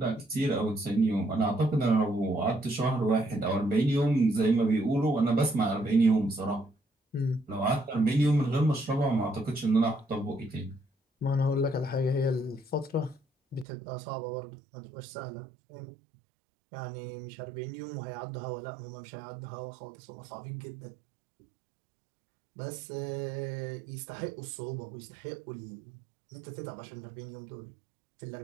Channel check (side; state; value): left; drops out; at 13.7 s